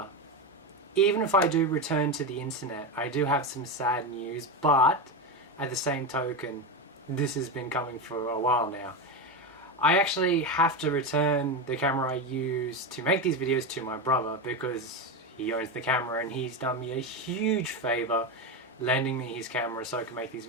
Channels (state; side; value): normal; both; correlation 0.15